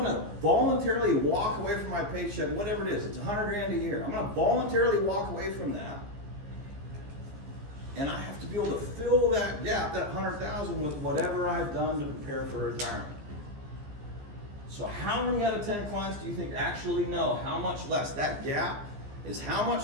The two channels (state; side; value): late; left; 15 ms